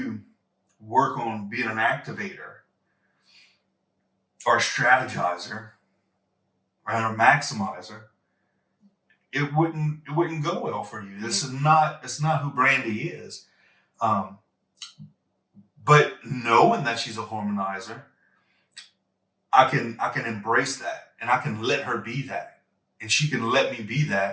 work on being an activator or a strategizer or a maximizer, it wouldn't go well for you. It's not who Brandy is. Um, but knowing that she's a harmonizer, I can embrace that, and I can let her be that, and she can let me be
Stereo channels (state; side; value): identical; both; correlation 1.00